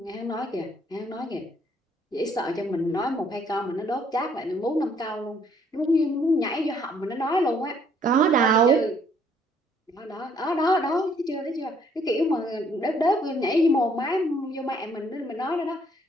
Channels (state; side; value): normal; both; correlation 0.65